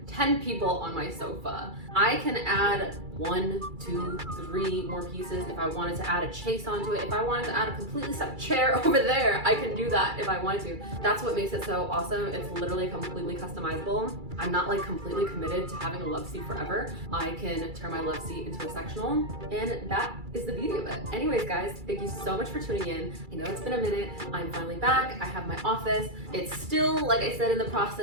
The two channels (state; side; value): late; left; 2.3 ms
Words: 10 people on my sofa, I can add 1, 2, 3 more pieces. If I wanted to add a chase onto it, if I wanted to add a completely separate chair over there, I can do that if I wanted to. That's what makes it so awesome. It's literally completely customizable. I'm not like completely committed to having a love seat forever. I can turn my love seat into a sectional, and that is the beauty of it. Anyways, guys, thank you so much for tuning in. I know it's been a minute. I'm finally back. I have my office. It's still, like I said, in the